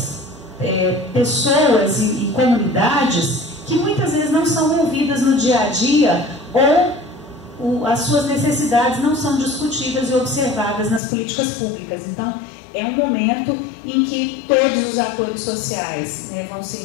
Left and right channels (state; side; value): drops out; right; at 11.0 s